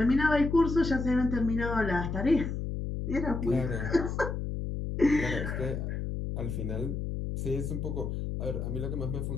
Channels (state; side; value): noise; left; hum, 3 dB below the sound